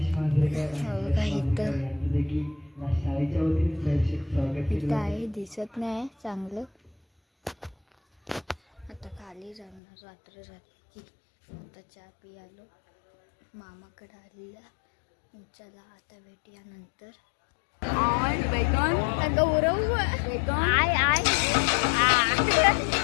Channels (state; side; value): drops out; right; at 9.8 s